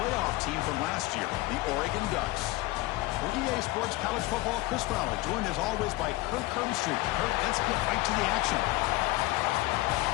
team from last year, the Oregon Ducks. For EA Sports College Football, Chris Fowler, joined as always by Kirk Herbstreit. Kirk, let's get right to the action.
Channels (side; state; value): right; quieter; 19.6 dB